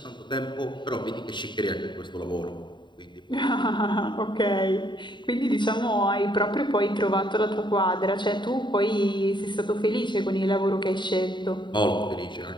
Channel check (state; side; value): late; right; 0.22 ms